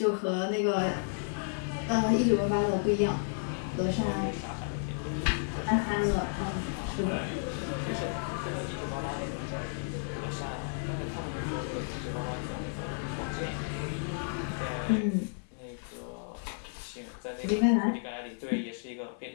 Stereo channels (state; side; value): silent; right; digital silence